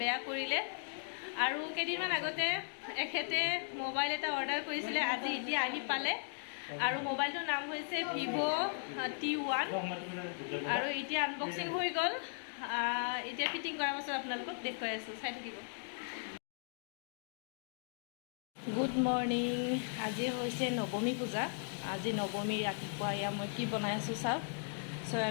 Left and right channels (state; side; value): silent; right; digital silence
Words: বেয়া কৰিলে আৰু কেইদিনমান আগতে এখেতে মোবাইল এটা অৰ্ডাৰ কৰিছিলে আজি এতিয়া আহি পালে আৰু মোবাইলটোৰ নাম হৈছে T1 আৰু এতিয়া আনবক্সিং হৈ গ'ল এতিয়া ফিটিং কৰাৰ পাছত আপোনালোকক দেখুৱাই আছোঁ চাই থাকিব গুড মৰ্ণিং আজি হৈছে নৱমী পূজা আজি নৱমী ৰাতিপুৱা এয়া মই কি বনাই আছোঁ চাওক